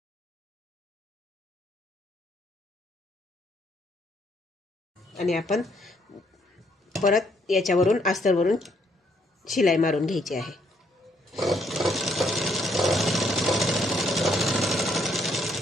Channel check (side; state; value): both; normal; correlation 0.70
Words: आणि आपण परत याच्यावरून अस्तरवरून शिलाई मारून घ्यायची आहे.